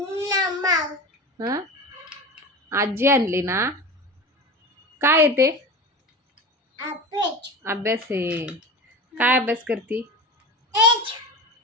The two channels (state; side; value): normal; both; correlation 0.29